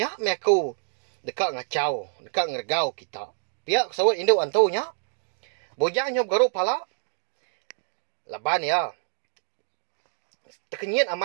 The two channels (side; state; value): left; silent; digital silence